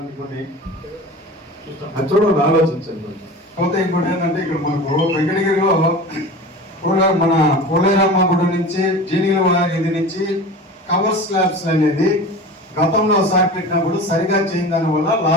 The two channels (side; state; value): both; normal; correlation 0.34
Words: కొన్ని చూడండి, ఆలోచించండి. పోతే ఇంకోటి ఏంటంటే ఇక్కడ మనకు వెంకటగిరిలో మన పోలేరమ్మ గుడి నుంచి జీనిగల ఇది నుంచి కవర్ స్లాబ్స్ అనేది గతంలో ఒకసారి పెట్టినప్పుడు సరిగా చేయని దాని వల్ల